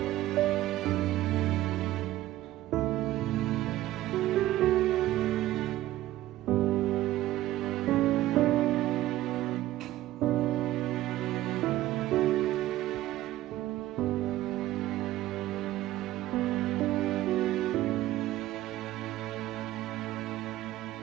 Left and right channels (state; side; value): quieter; left; 15.0 dB